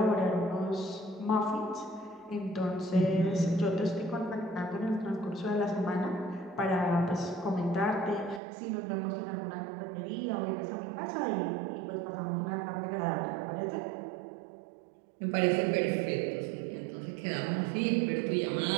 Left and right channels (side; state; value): left; drops out; at 8.4 s